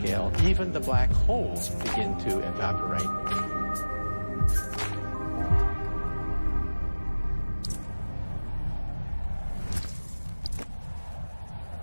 even the black holes begin to evaporate.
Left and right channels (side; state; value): both; inverted; correlation -1.00